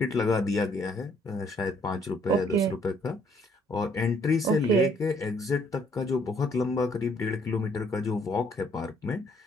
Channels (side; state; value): both; normal; correlation 0.65